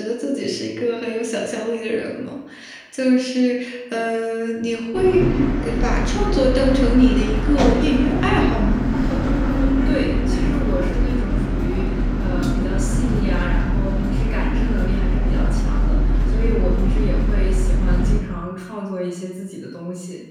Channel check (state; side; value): identical; both; correlation 1.00